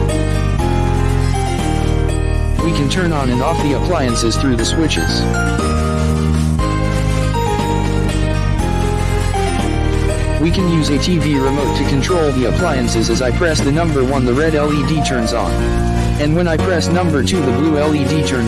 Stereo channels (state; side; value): identical; both; correlation 1.00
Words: We can turn on and off the appliances through the switches. We can use a TV remote to control the appliances. As I press the number 1, the red LED turns on. And when I press number 2, the blue LED